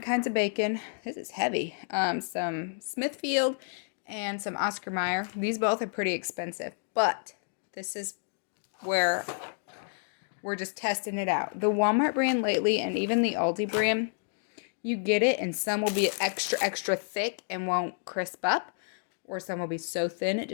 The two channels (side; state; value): right; silent; digital silence